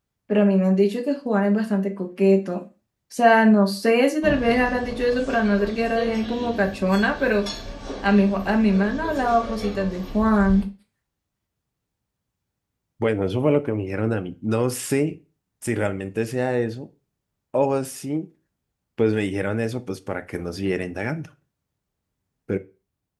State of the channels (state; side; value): identical; both; correlation 1.00